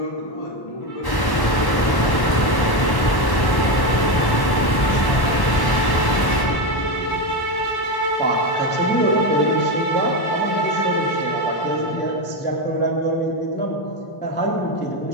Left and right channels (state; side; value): late; right; 1.1 ms